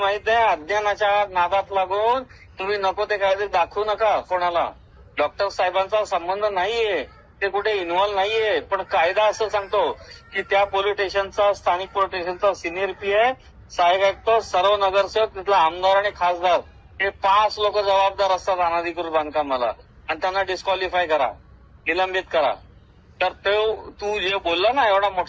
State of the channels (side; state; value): both; identical; correlation 1.00